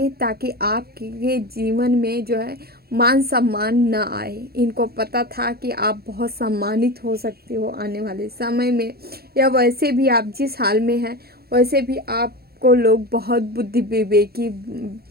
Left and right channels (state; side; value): late; left; 0.45 ms